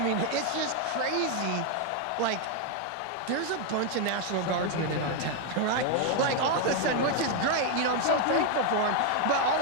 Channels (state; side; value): different; both; correlation 0.01